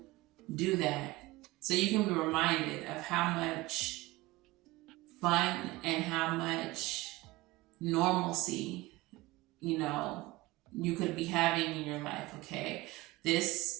do that. So you can be reminded of how much fun and how much normalcy, you could be having in your life, okay?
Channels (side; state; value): left; quieter; 20.1 dB